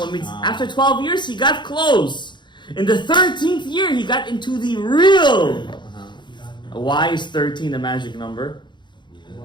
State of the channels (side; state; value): right; late; 0.22 ms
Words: Means after 12 years he got close. In the 13th year he got into the real. Why is 13 the magic number?